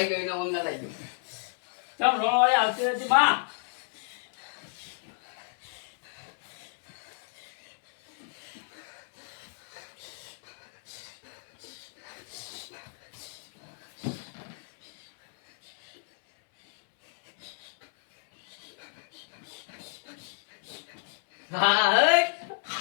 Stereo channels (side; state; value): right; silent; 57 dB below the other